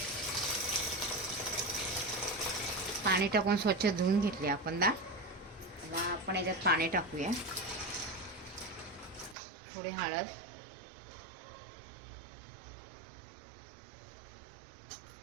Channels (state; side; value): drops out; left; at 9.3 s